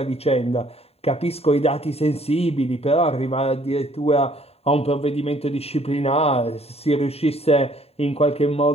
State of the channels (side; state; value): right; late; 0.29 ms